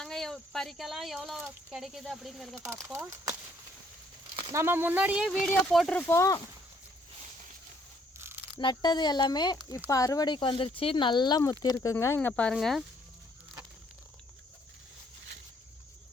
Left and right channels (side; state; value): both; normal; correlation 0.66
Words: பறிக்கலாம், எவ்வளோ கிடைக்குது அப்படிங்கிறத பார்ப்போம். நம்ம முன்னாடியே வீடியோ போட்டிருப்போம், நட்டது எல்லாமே. இப்போ அறுவடைக்கு வந்துருச்சு, நல்லா முத்தி இருக்குங்க. இங்கே பாருங்கள்.